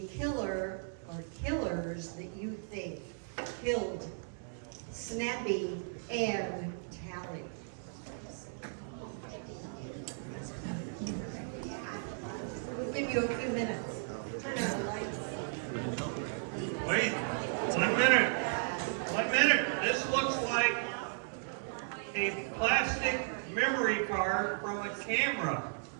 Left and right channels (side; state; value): left; silent; digital silence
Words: killer or killers that you think killed Snappy and Tally. We'll give you a few minutes. Turn on the lights. Wait, 1 minute. 1 minute. This looks like a plastic memory card from a camera.